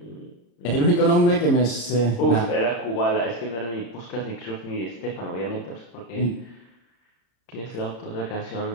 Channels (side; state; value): right; late; 34 ms